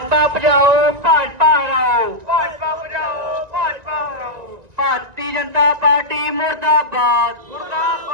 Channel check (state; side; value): late; left; 1.9 ms